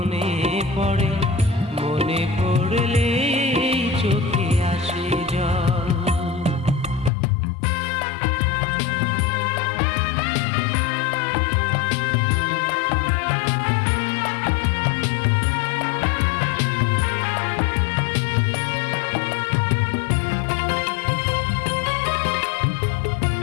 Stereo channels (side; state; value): right; drops out; at 7.1 s